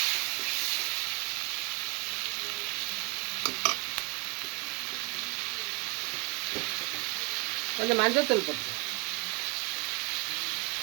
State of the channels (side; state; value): left; quieter; 28.3 dB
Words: கொஞ்சம் மஞ்சள் தூள் போட்டு